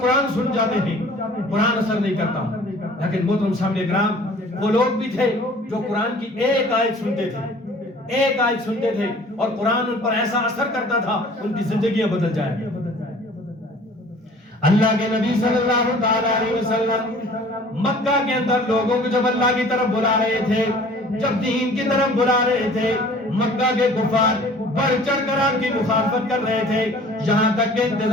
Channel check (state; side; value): normal; both; correlation 0.49